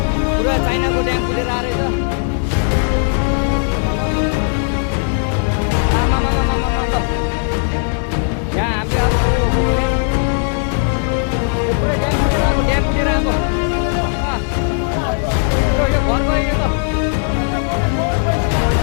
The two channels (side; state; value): right; silent; 58 dB below the other